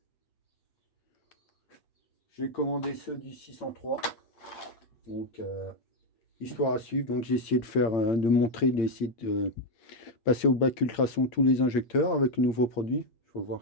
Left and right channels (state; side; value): late; right; 8.8 ms